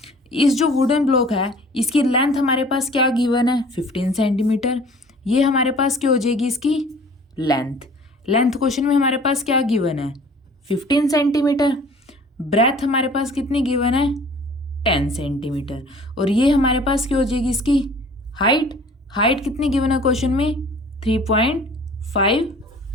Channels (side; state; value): both; normal; correlation 0.49